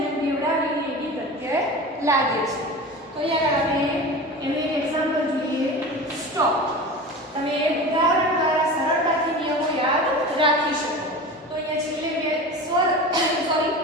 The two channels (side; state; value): both; normal; correlation 0.32